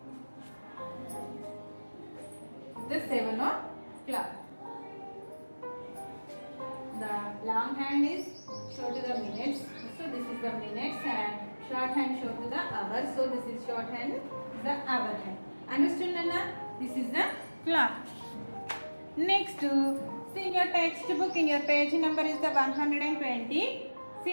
The 7 o'clock. The long hand is show to the minutes. So this is the minutes hand. Short hand show to the hours. So this is short hand, the hour hand. Understood, Nana? This is the clock. Next, see in your textbook, in your page number is the 120.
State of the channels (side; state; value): both; inverted; correlation -1.00